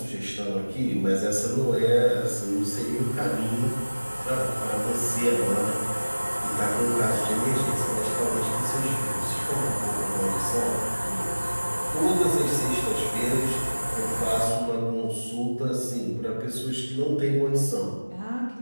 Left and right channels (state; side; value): inverted; both; correlation -1.00